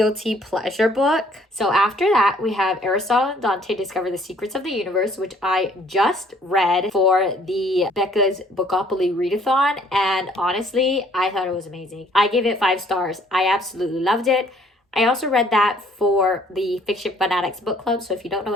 pleasure book. So after that, we have Aristotle and Dante Discover the Secrets of the Universe, which I just read for the Becca's Bookopoly readathon, and honestly, I thought it was amazing. I gave it 5 stars. I absolutely loved it. I also read that for the Fiction Fanatics Book Club, so if you don't know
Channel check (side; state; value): both; normal; correlation 0.61